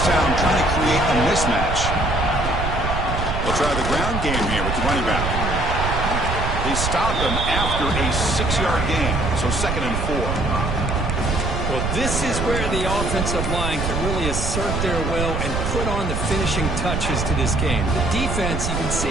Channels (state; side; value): noise; right; rumble, 2 dB below the sound